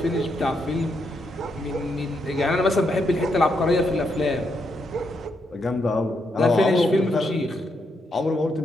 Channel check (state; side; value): normal; both; correlation 0.79